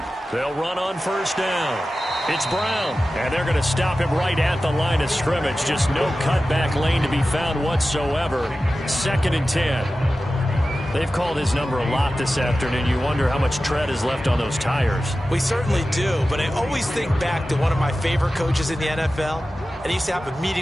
They'll run on 1st down. It's Brown, and they're going to stop him right at the line of scrimmage. Just no cutback lane to be found whatsoever. 2nd and 10. They've called his number a lot this afternoon. You wonder how much tread is left on those tires. We certainly do, but I always think back to one of my favorite coaches in the NFL, and he used to have a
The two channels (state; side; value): normal; both; correlation 0.94